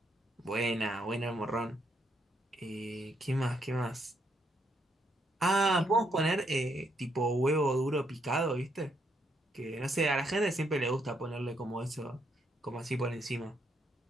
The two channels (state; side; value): normal; both; correlation 0.75